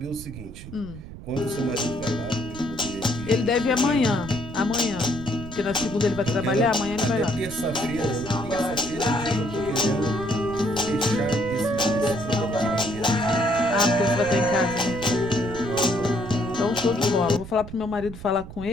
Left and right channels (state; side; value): noise; right; rumble, 13 dB below the sound